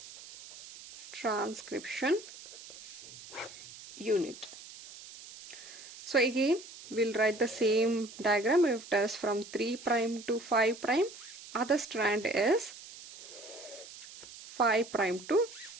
Transcription unit. So again, we'll write the same diagram. If it is from 3' to 5', other strand is 5' to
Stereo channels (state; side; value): noise; right; hiss, 16 dB below the sound